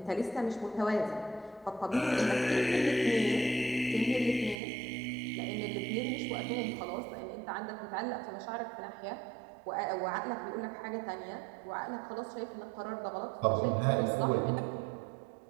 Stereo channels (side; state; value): left; drops out; at 4.5 s